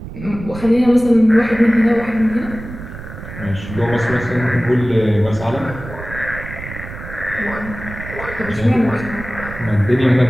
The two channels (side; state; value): right; noise; rumble, 12 dB below the sound